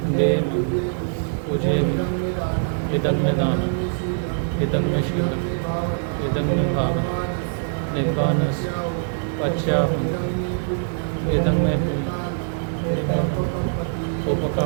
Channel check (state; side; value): silent; left; digital silence